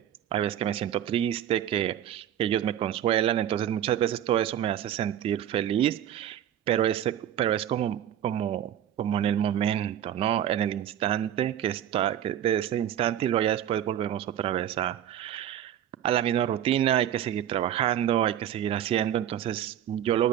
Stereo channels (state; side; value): quieter; left; 10.7 dB